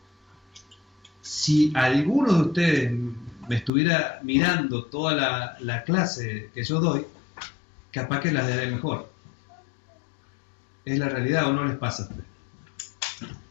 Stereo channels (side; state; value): right; drops out; at 3.7 s